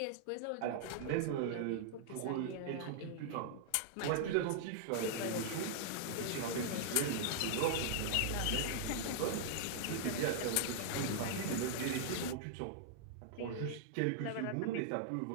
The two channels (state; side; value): different; both; correlation -0.01